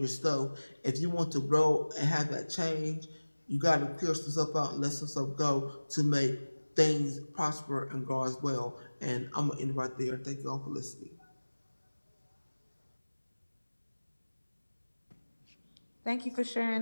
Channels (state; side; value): inverted; both; correlation -1.00